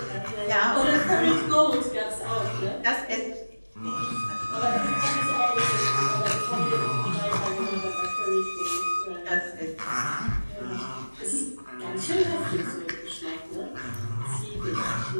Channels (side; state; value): both; inverted; correlation -1.00